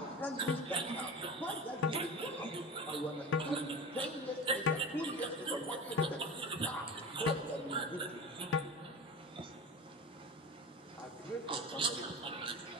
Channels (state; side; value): normal; both; correlation 0.32